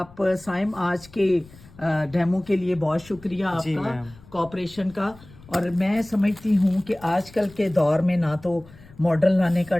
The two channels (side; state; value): left; noise; rumble, 22 dB below the sound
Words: سائم آج کے ڈیمو کے لیے بہت شکریہ آپ جی کا میم. کوآپریشن کا. اور میں سمجھتی ہوں کہ آج کل کے دور میں نہ تو ماڈل لانے کا